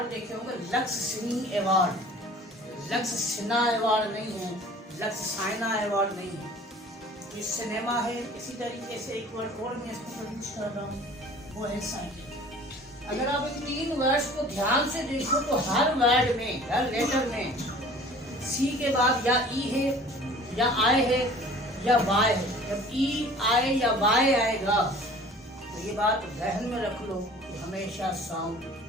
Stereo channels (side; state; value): both; normal; correlation 0.47